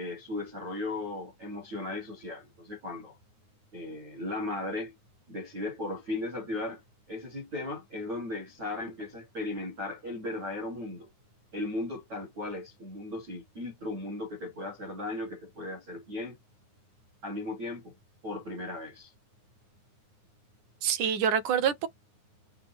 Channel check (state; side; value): late; left; 9.5 ms